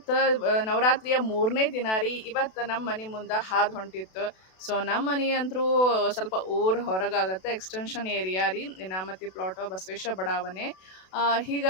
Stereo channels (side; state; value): right; late; 32 ms